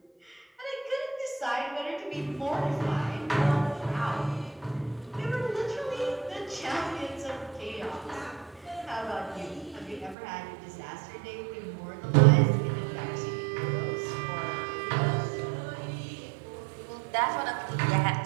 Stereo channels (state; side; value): drops out; left; at 10.2 s